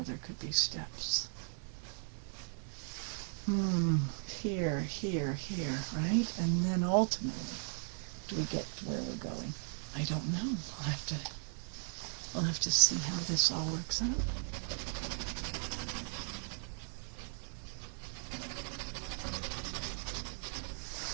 there could be steps. Here, right? And then ultimately, do we get to where we're going? I don't know. I'll have to see how this all works out.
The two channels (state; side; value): silent; left; 53 dB below the other